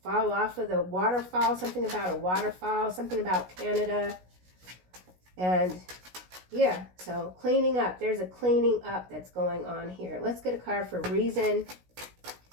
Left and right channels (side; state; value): left; late; 16 ms